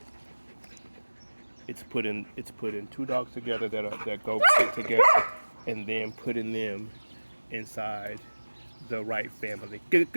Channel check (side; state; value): both; inverted; correlation -1.00